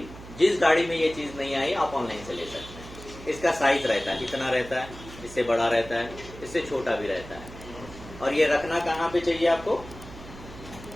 जिस गाड़ी में ये चीज नहीं आई आप ऑनलाइन से ले सकते हैं। इसका साइज रहता है, इतना रहता है, इससे बड़ा रहता है, इससे छोटा भी रहता है। और ये रखना कहाँ पे चाहिए आपको?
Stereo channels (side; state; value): right; noise; hum, 16 dB below the sound